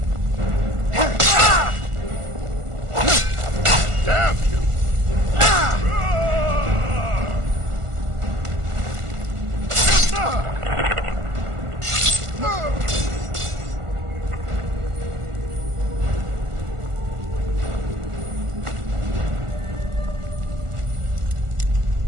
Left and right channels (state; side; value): late; left; 1.4 ms